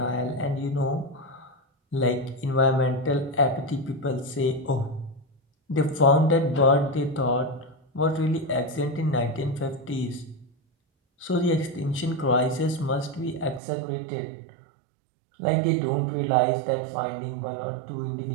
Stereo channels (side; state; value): left; drops out; at 13.6 s